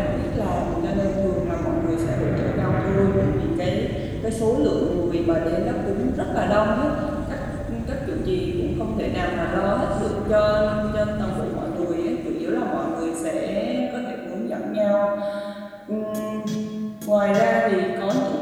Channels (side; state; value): both; identical; correlation 1.00